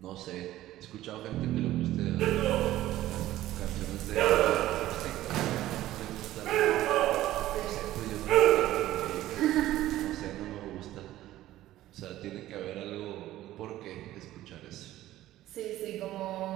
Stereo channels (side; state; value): left; quieter; 14.7 dB